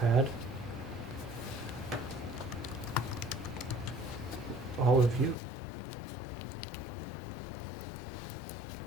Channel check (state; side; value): drops out; right; at 5.4 s